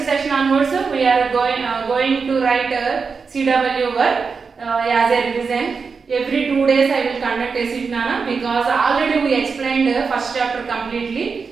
session onwards, we are going to write CW work as a revision. Every 2 days I will conduct a sit, Nana, because already we explained first chapter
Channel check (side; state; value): left; quieter; 5.2 dB